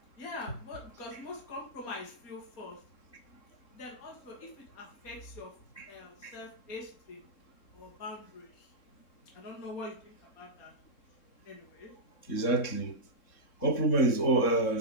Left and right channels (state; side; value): late; right; 3.7 ms